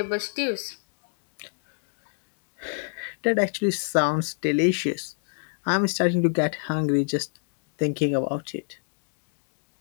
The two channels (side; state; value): right; silent; 56 dB below the other